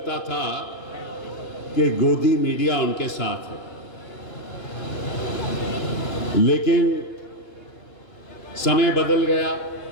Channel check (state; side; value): late; right; 2.9 ms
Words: था कि गोदी मीडिया उनके साथ है। लेकिन समय बदल गया,